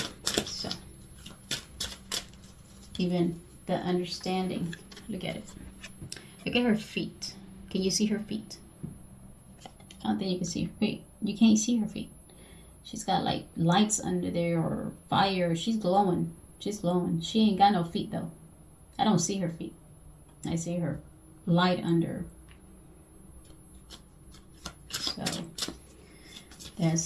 so even the understanding. Look at it. Look at her feet. Can you see her feet? I don't think you can see her feet. You can't see her feet. She's got like lights under there or fire. She's glowing. She's glowing. She ain't got no feet though. I don't see her feet. I see her light under. So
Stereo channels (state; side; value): identical; both; correlation 1.00